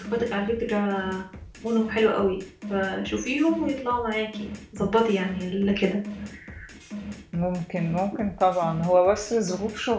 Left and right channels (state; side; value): identical; both; correlation 1.00